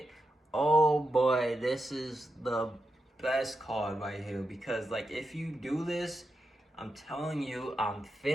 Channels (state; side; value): normal; both; correlation 0.87